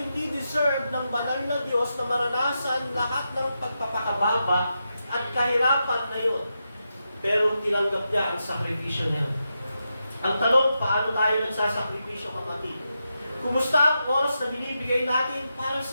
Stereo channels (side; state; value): both; inverted; correlation -0.87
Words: hindi deserve ng banal na Diyos na maranasan lahat ng pagpapakababa at kahirapan na yun. Pero tinanggap niya ang sakripisyo niya. Ang tanong, paano tayo nagsasakripisyo, kapatid? Kumusta ang oras na binibigay natin para